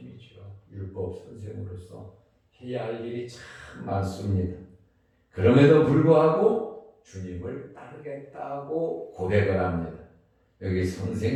율법 선생으로서 해야 할 일이 참 많습니다. 그럼에도 불구하고 주님을 따르겠다고 고백을 합니다. 여기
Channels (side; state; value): both; identical; correlation 1.00